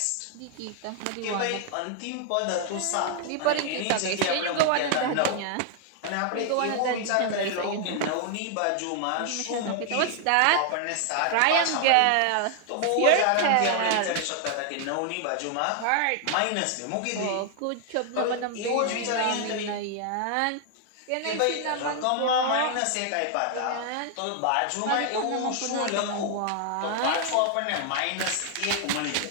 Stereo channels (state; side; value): different; both; correlation 0.00